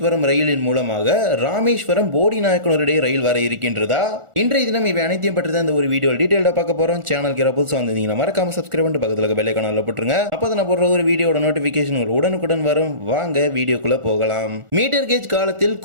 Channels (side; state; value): left; late; 1.4 ms